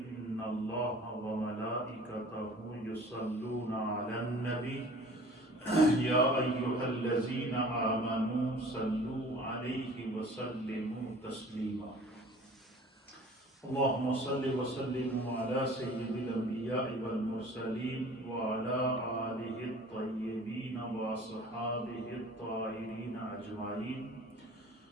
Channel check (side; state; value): both; normal; correlation 0.46